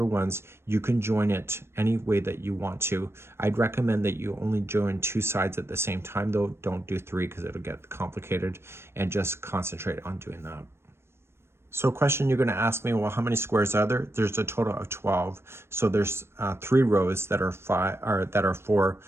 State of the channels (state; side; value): late; left; 0.12 ms